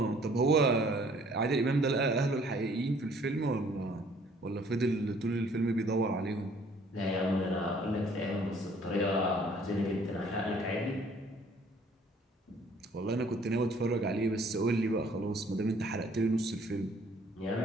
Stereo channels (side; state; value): both; normal; correlation 0.58